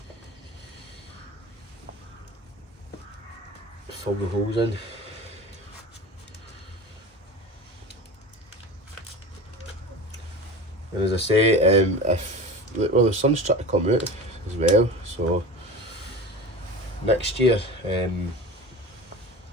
fill the holes in. And as I say, well, the sun's trying to come out as well, so next year,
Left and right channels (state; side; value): normal; both; correlation 0.33